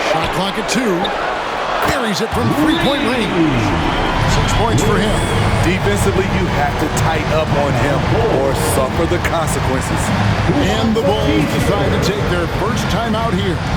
Shot clock at 2. Buries it from three-point range. 6 points for him. Defensively, you have to tighten up on him or suffer the consequences. And the Bulls decide to take their first time out here.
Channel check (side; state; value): both; identical; correlation 1.00